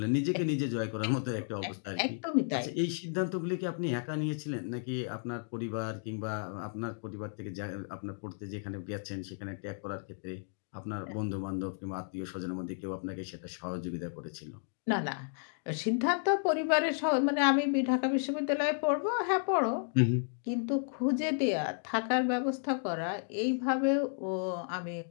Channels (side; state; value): right; silent; digital silence